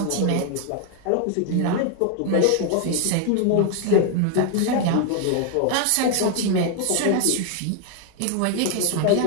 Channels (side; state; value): both; different; correlation 0.00